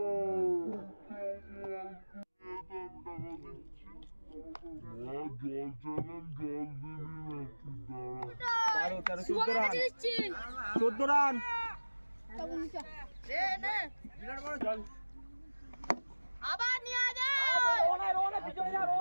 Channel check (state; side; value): inverted; both; correlation -1.00